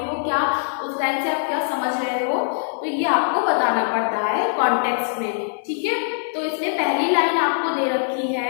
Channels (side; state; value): right; silent; digital silence